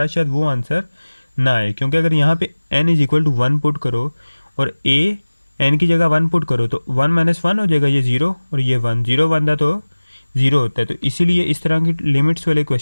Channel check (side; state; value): both; inverted; correlation -1.00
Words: शायद वो आंसर ना आए, क्योंकि अगर यहाँ पे n = 1 पुट करो और a n की जगह 1 पुट करो तो 1 - 1 हो जाएगा, ये 0 और ये 1, 0 बनता तो 0 होता है। तो इसीलिए इस तरह की लिमिट्स वाले